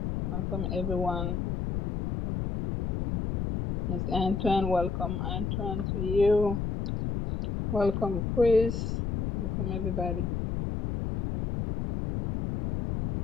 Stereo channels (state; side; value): noise; left; rumble, 2 dB below the sound